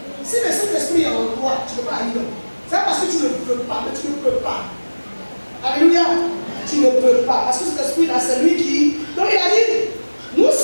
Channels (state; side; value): inverted; both; correlation -1.00